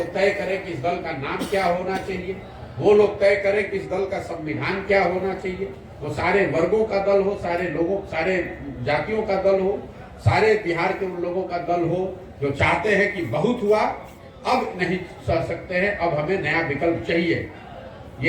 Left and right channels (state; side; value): identical; both; correlation 1.00